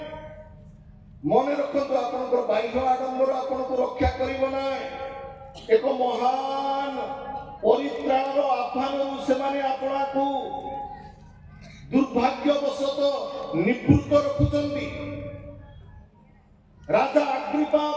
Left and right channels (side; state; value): both; identical; correlation 1.00